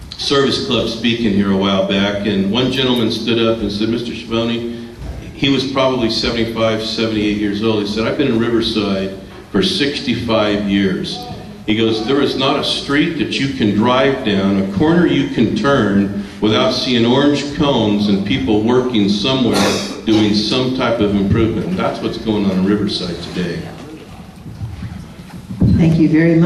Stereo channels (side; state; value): both; identical; correlation 1.00